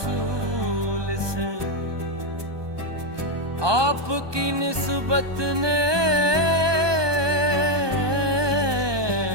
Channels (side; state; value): left; late; 1.2 ms